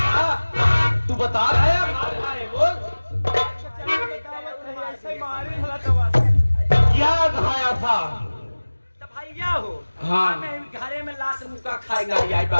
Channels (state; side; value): inverted; both; correlation -1.00